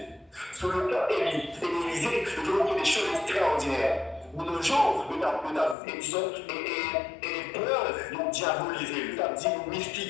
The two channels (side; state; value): right; drops out; at 5.8 s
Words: Sur le plan Élysée, nous avons fait des choses extraordinaires. De nos jours, nous avons peur de diaboliser, nous avons dit